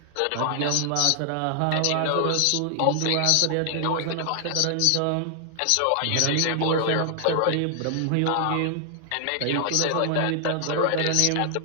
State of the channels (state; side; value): different; both; correlation 0.00